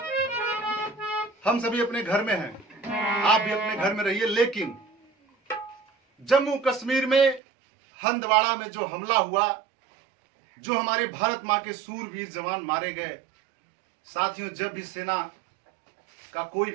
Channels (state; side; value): drops out; left; at 7.4 s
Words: हम सभी अपने घर में हैं, आप भी अपने घर में रहिए, लेकिन जम्मू कश्मीर में हंदवाड़ा में जो हमला हुआ, जो हमारे भारत मां के सूरवीर जवान मारे गए, साथियों जब भी सेना का कोई